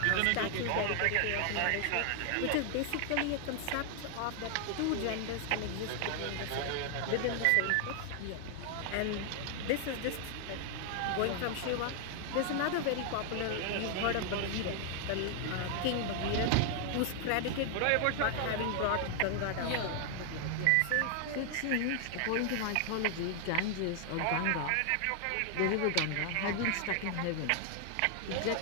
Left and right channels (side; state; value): both; different; correlation 0.00